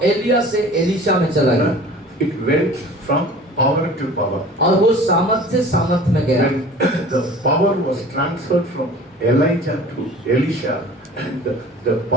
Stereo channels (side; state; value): both; normal; correlation 0.44